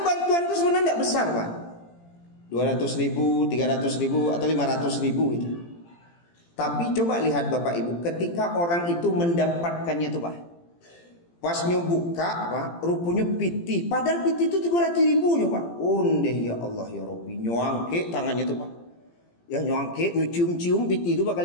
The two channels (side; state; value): right; late; 17 ms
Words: bantuan itu sebenarnya tidak besar Pak, 200.000, 300.000 atau 500.000 itu. Tapi coba lihat Bapak Ibu, ketika orang itu mendapatkannya tuh Pak, pas nyobuka Pak, rupanya piti, padahal piti itu 300.000 Pak. Ondeh ya Allah ya Rabbi, nyuangke tangannya tuh Pak, ya nyuangke, nyucium-cium piti itu